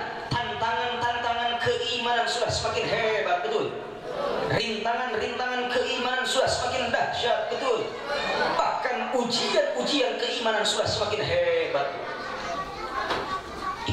tantangan keimanan sudah semakin hebat, betul? Rintangan-rintangan keimanan sudah semakin dahsyat, betul. Bahkan ujian-ujian keimanan sudah semakin hebat.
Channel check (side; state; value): both; identical; correlation 1.00